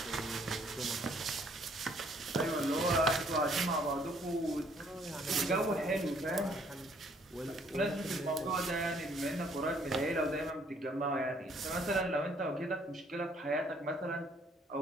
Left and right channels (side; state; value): both; normal; correlation 0.64